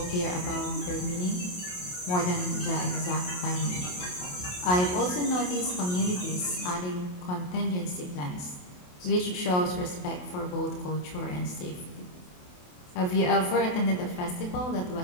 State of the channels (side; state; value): right; late; 28 ms